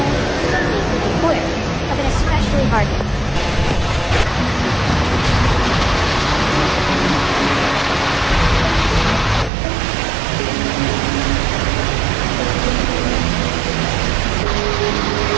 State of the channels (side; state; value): left; drops out; at 9.5 s